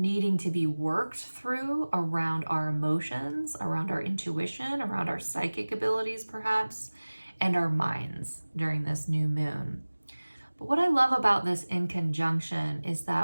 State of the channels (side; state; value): both; inverted; correlation -1.00